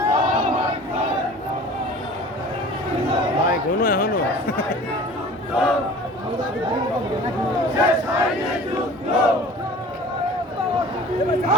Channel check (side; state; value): both; normal; correlation 0.43